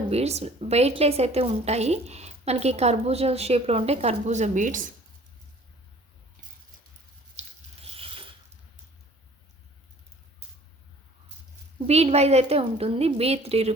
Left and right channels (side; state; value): both; normal; correlation 0.51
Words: బీడ్స్ వెయిట్లెస్ అయితే ఉంటాయి. మనకి కర్బూజా షేప్లో ఉంటాయి కర్బూజా బీడ్స్. బీడ్ వైజ్ అయితే ఉంటుంది. బీడ్ 3